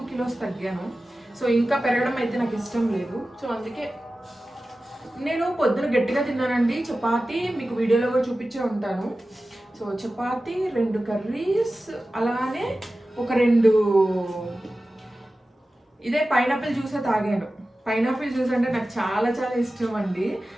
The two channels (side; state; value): both; normal; correlation 0.95